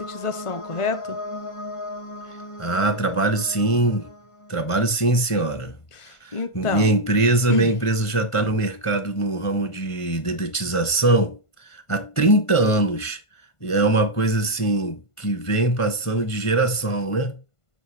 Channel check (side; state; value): right; late; 1.5 ms